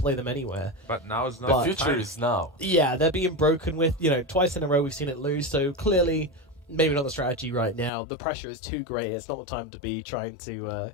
them anywhere. But now is not The future is now. Yeah, they're being broken with, twice in a row we've seen it lose, so clearly maybe not the strategy right now. The pressure is too great. It's not the time to be trying to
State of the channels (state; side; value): drops out; right; at 7.9 s